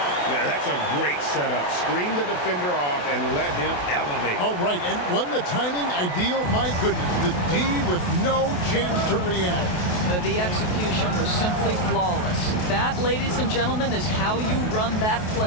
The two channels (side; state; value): right; late; 28 ms